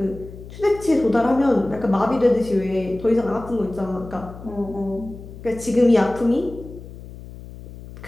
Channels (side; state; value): left; noise; hum, 15 dB below the sound